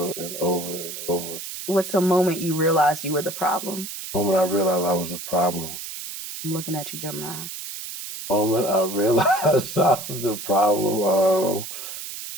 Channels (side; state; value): right; noise; hiss, 9 dB below the sound